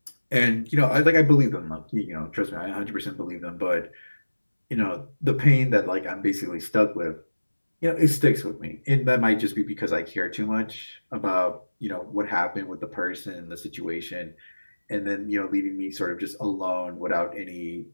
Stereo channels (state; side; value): inverted; both; correlation -1.00